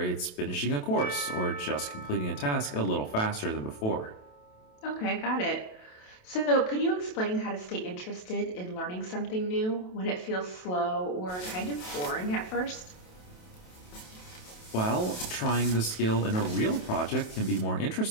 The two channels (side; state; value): right; late; 27 ms